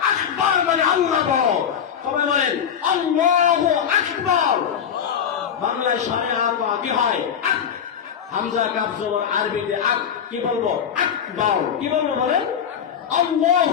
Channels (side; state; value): right; quieter; 8.1 dB